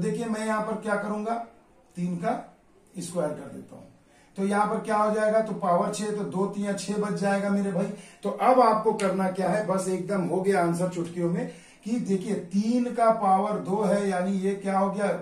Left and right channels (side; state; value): both; identical; correlation 1.00